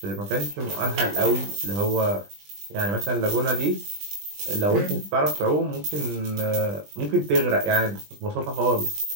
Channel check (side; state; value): left; late; 20 ms